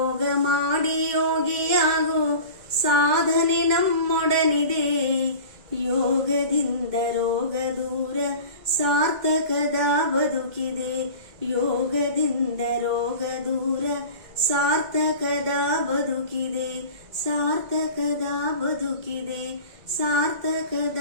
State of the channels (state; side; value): late; left; 2.1 ms